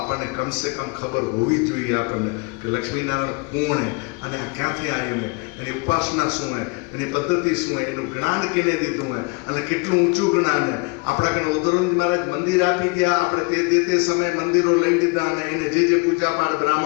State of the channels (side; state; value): right; quieter; 30.1 dB